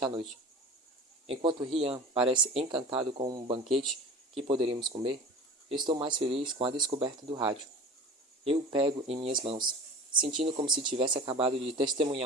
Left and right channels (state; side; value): normal; both; correlation 0.37